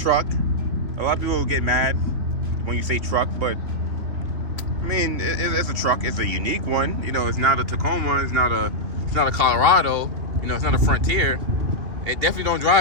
A lot of people get mad when you say truck, but I mean, it's a truck. It's a unique one. You know, it's not a Tacoma. It's not a Colorado. You know, it's not a Frontier. It definitely don't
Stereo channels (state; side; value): late; left; 3.3 ms